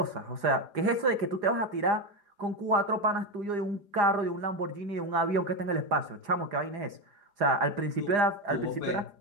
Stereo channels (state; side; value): late; left; 4.9 ms